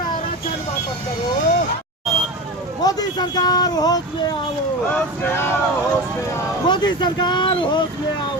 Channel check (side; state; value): both; normal; correlation 0.26